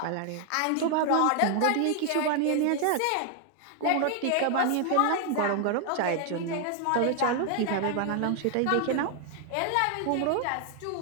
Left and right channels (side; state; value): both; different; correlation 0.00